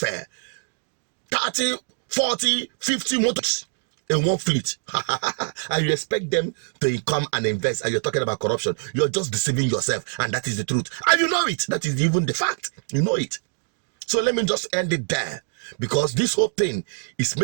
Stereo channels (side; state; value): left; silent; digital silence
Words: 30, 40, 50 motors in one fleet. And you expect them to come and invest, and you're talking about corruption. You're just deceiving yourself, and that is the truth. And you know it. That is even the fact. You know it. So let me just end it there, because this whole thing is